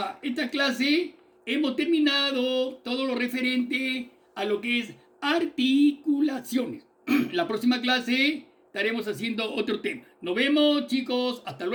esta clase hemos terminado todo lo referente a lo que es articulaciones. La próxima clase estaremos haciendo otro tema. Nos vemos, chicos. Hasta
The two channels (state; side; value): identical; both; correlation 1.00